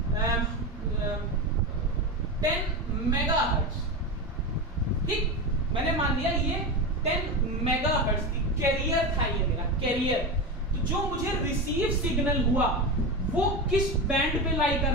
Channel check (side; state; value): both; normal; correlation 0.20